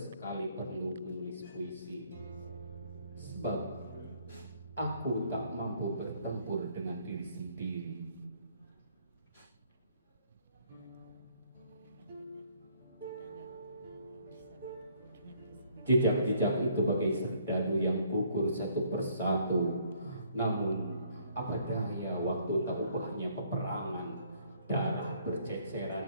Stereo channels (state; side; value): inverted; both; correlation -0.64